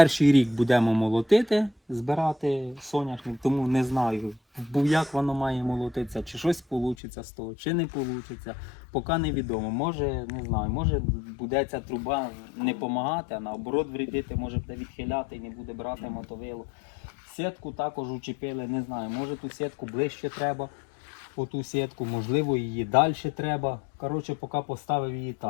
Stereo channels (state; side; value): drops out; right; at 7.0 s